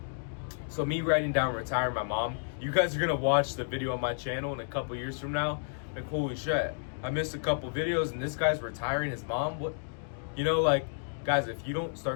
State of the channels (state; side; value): silent; right; digital silence